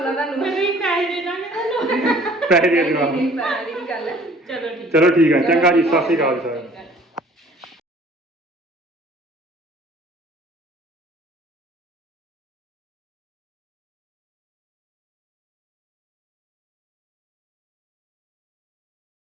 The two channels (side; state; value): both; normal; correlation 0.53